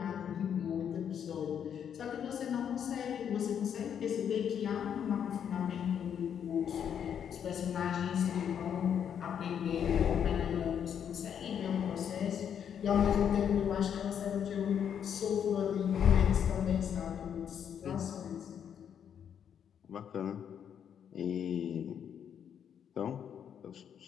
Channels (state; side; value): quieter; right; 8.5 dB